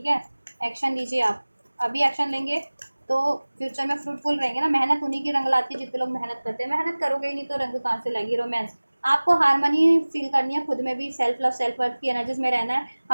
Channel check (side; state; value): both; inverted; correlation -1.00